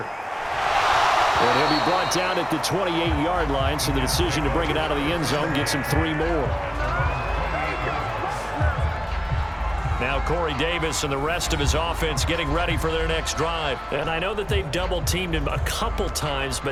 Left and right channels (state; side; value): identical; both; correlation 1.00